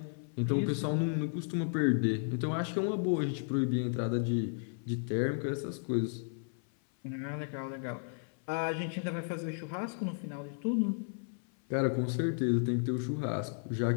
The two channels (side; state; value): right; silent; 55 dB below the other